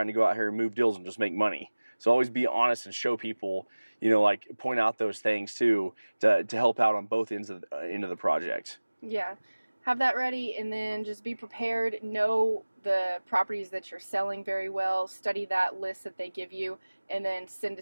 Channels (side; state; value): both; inverted; correlation -1.00